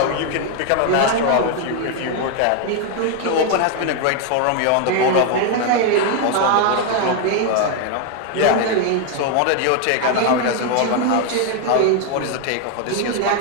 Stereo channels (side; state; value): both; different; correlation 0.01